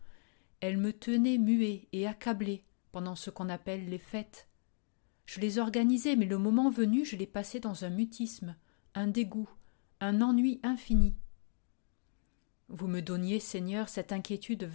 Elle me tenait muet et accablé pendant ce qu'on appelle les fêtes. Je les organisais, mais le moment venu, je les passais dans un mutisme, un dégoût, un ennui infini. Vous me donniez, Seigneur, cette inquiétude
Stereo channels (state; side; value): silent; right; 54 dB below the other